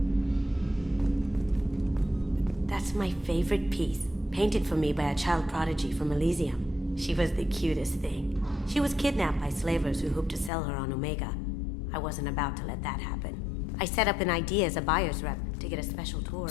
That's my favorite piece, painted for me by a child prodigy from Elysium. She was the cutest thing. She was kidnapped by slavers who hoped to sell her on Omega. I wasn't about to let that happen. I set up an idea as a buyer's rep to get a special tour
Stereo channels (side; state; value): right; drops out; at 10.5 s